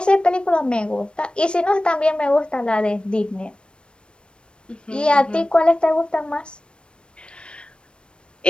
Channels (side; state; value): right; late; 0.056 ms